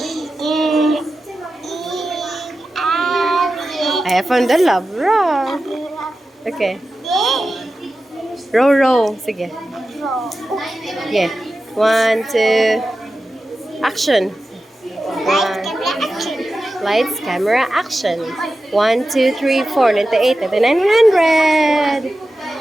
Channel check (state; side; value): normal; both; correlation 0.93